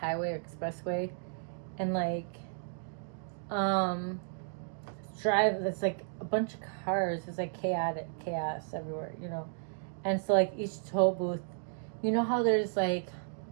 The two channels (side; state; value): left; silent; digital silence